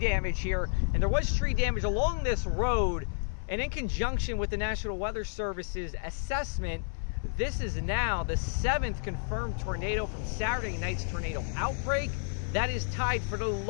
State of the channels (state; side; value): silent; right; 57 dB below the other